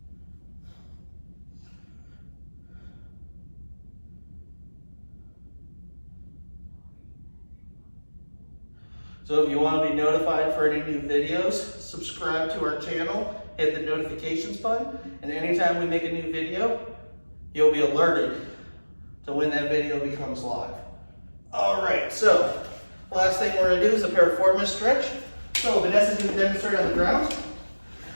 So if you want to be notified for any new videos, subscribe to our channel, hit the notifications button, and anytime we make a new video, you'll be alerted to when that video becomes live. All right, so last thing we're gonna do is a piriformis stretch. So Vanessa's gonna demonstrate on the ground.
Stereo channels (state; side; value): inverted; both; correlation -1.00